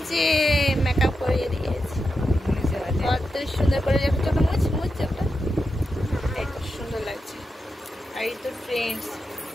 যে মেকআপ করিয়ে দিয়েছে, কত সুন্দর করে চোখটা মুছ চোখটা, এত সুন্দর লাগছে। আর এই তো ফ্রেন্ডস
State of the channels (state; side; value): normal; both; correlation 0.88